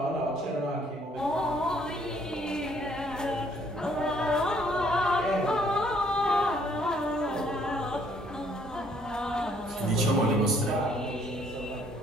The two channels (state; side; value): normal; both; correlation 0.64